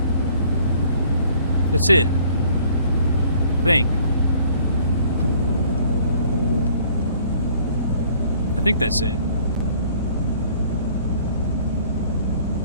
That's it. I think. I think that's it.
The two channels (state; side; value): inverted; both; correlation -0.58